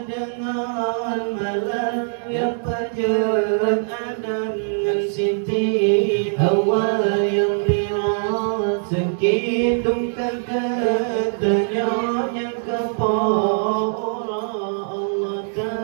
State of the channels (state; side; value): silent; left; digital silence